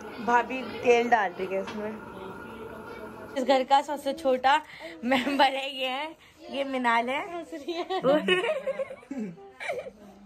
भाभी तेल डाल रही है इसमें। इस घर का सबसे छोटा मेंबर है ये मिनाल है। ऐसे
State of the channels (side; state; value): both; identical; correlation 1.00